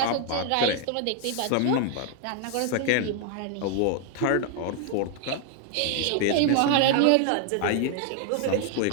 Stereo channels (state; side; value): different; both; correlation 0.00